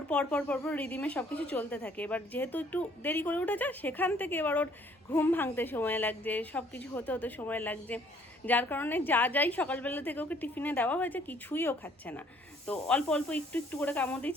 পরপর রিদিমে সব কিছু চলতে থাকে। এবার যেহেতু একটু দেরি করে উঠেছে, সেখান থেকে এবার ওর ঘুম ভাঙতে সময় লাগছে, সব কিছু হতে হতে সময় লাগছে, যার কারণে যাই সকালবেলা থেকে ওকে টিফিনে দেওয়া হয়েছে কিছুই ও খাচ্ছে না। তো অল্প একটু করে কামড়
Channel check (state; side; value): normal; both; correlation 0.61